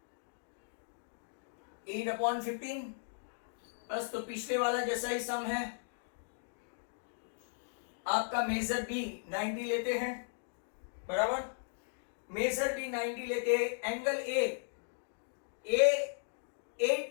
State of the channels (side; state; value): right; silent; digital silence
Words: 8/15, बस तो पिछले वाला जैसा ही सम है। आपका मेजर बी 90 लेते हैं, बराबर। मेजर बी 90 लेते हैं, angle A